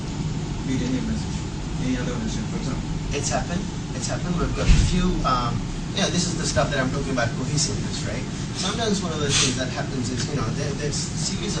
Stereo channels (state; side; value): identical; both; correlation 1.00